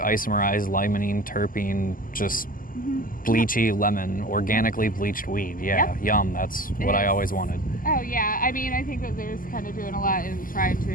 limonene, terpene, just bleachy lemon, organically bleached weed. Yeah, yum. That's what I always wanted. Oh yeah, I mean, I think that there's kind of doing a lot in trying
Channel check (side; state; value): right; late; 0.41 ms